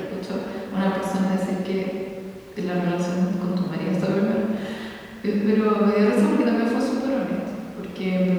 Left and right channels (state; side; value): identical; both; correlation 1.00